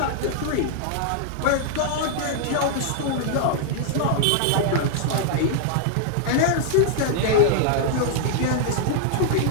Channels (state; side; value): different; both; correlation -0.01